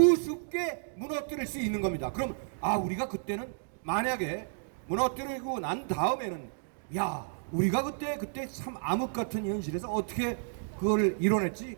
무너뜨릴 수 있는 겁니다. 그럼 우리가 그때는 만약에 무너뜨리고 난 다음에는 야 우리가 그때 참 암흑 같은 현실에서 어떻게 그걸 이뤄냈지?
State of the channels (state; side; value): silent; left; digital silence